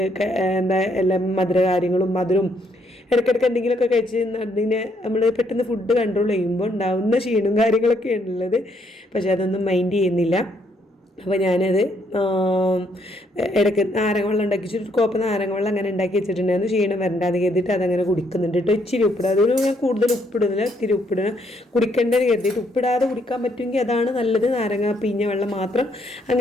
എല്ലാം മധുരം ഇടയ്ക്കിടയ്ക്ക് എന്തെങ്കിലുമൊക്കെ കഴിച്ച് അതിനെ നമ്മൾ പെട്ടെന്ന് ഫുഡ് കൺട്രോൾ ചെയ്യുമ്പോൾ ഉണ്ടാവുന്ന ക്ഷീണവും കാര്യങ്ങളൊക്കെയാണ് ഉള്ളത്. പക്ഷെ അതൊന്നും മൈൻഡ് ചെയ്യുന്നില്ല. അപ്പോൾ ഞാനത് ഇടയ്ക്ക് നാരങ്ങ വെള്ളം ഒരു കോപ്പ് നാരങ്ങ വെള്ളം അങ്ങനെ ഉണ്ടാക്കി വെച്ചിട്ടുണ്ടായിരുന്നു. ക്ഷീണം വരണ്ടാന്ന് കരുതിയിട്ട് അതങ്ങനെ കുടിക്കുന്നുണ്ട് കേട്ടോ. ഇച്ചിരി ഉപ്പിടുക, അതിൽ ഞാൻ കൂടുതൽ ഉപ്പിടുന്നില്ല, ഇത്തിരി ഉപ്പിടുക. കുടിക്കേണ്ടത് കരുതിയിട്ട് ഉപ്പിടാതെ കുടിക്കാൻ പറ്റുമെങ്കിൽ അതാണ് നല്ലത്. നാരങ്ങ പിഴിഞ്ഞ വെള്ളം മാത്രം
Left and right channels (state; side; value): normal; both; correlation 0.71